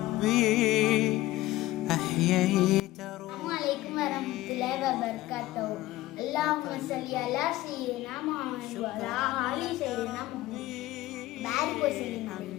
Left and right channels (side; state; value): right; quieter; 16.9 dB